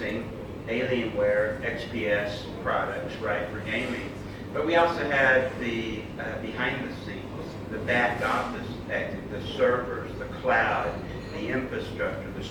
Alienware XPS products, right, for gaming. But we also have the behind the scenes, the back office, the servers, the cloud, the infrastructure, the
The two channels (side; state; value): both; identical; correlation 1.00